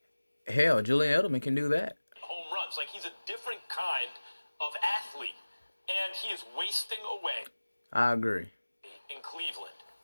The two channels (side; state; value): both; inverted; correlation -1.00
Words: Hell, Julian Edelman can do that. home runs. Like, he's a different kind of athlete, and he is wasting away I agree. in Cleveland